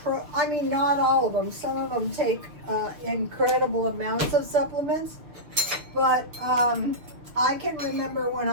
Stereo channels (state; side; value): late; left; 6.7 ms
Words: not all of them. Some of them take incredible amounts of supplements. But I can remember when